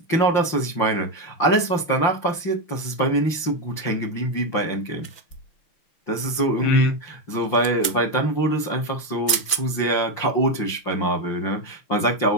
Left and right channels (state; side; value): late; right; 6.0 ms